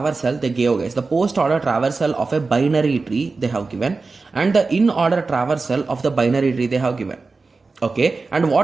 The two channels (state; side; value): quieter; left; 4.0 dB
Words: they gave, guys, the post order traversal of a binary tree they have given, and the in order traversal of the binary tree they have given. Okay, and